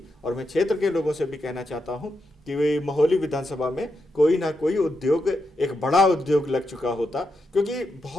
और मैं क्षेत्र के लोगों से भी कहना चाहता हूं कि वे महोली विधानसभा में कोई ना कोई उद्योग, एक बड़ा उद्योग लग चुका होता, क्योंकि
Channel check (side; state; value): both; normal; correlation 0.85